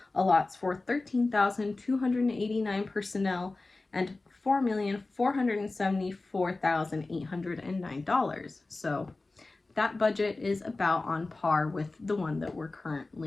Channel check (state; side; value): quieter; right; 3.3 dB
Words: allots for 13,289 personnel and $4,474,809. So that budget is about on par with the one that we're